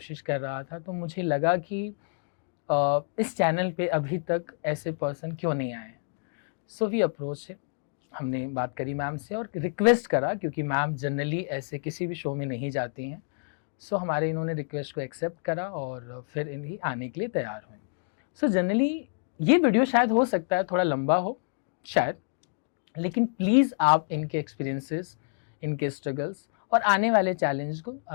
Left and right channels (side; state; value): right; silent; digital silence